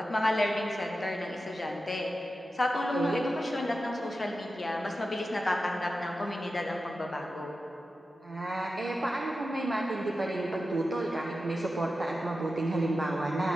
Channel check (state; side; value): normal; both; correlation 0.92